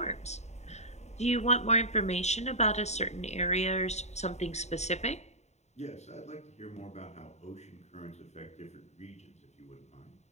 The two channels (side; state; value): right; late; 0.32 ms